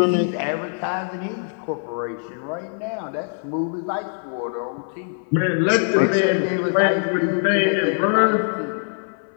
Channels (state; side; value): silent; right; 58 dB below the other